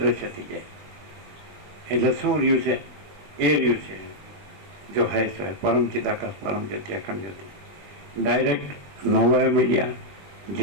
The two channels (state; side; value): late; left; 21 ms